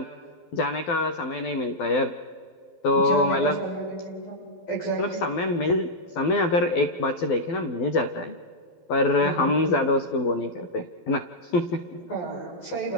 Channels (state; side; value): late; right; 12 ms